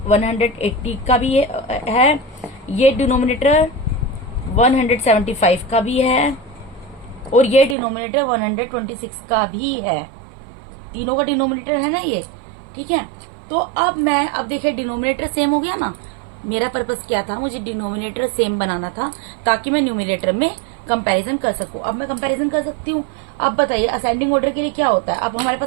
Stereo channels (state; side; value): drops out; left; at 7.8 s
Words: 180 का भी है, ये डिनोमिनेटर 175 का भी है, और ये डिनोमिनेटर 126 का भी है। तीनों का डिनोमिनेटर है ना ये। ठीक है, तो अब देखिए डिनोमिनेटर सेम हो गया ना। मेरा पर्पस क्या था, मुझे डिनोमिनेटर सेम बनाना था ताकि मैं न्यूमरेटर में कंपैरिजन कर सकूं। अब मैं कंपैरिजन कर सकती हूँ। अब बताइए असेंडिंग ऑर्डर के लिए क्या होता है। अब हमारे